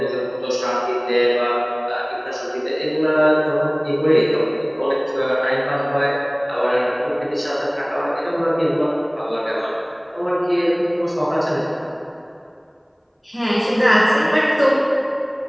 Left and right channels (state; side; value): identical; both; correlation 1.00